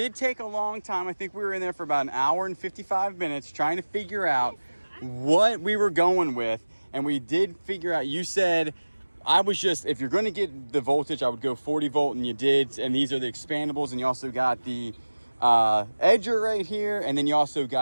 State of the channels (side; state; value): both; inverted; correlation -1.00